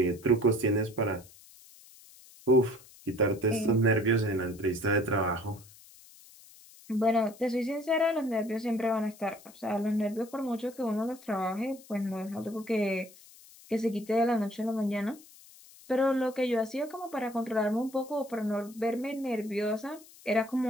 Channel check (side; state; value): left; noise; hiss, 22 dB below the sound